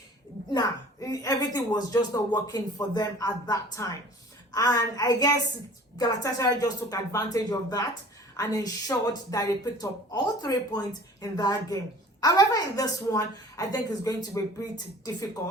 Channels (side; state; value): both; normal; correlation 0.47